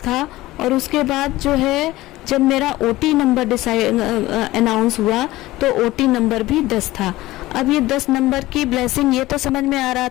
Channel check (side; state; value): right; quieter; 17.7 dB